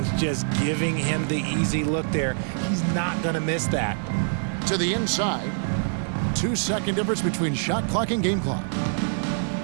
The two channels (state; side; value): silent; left; digital silence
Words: just giving him the easy look there. He's not going to miss that. To the inside. 2-second difference between shot clock and game clock.